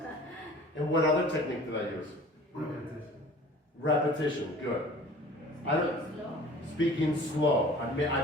And what other technique did I use? Repetition. Repetition, good. I don't, Slow. speaking slow.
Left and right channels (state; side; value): normal; both; correlation 0.46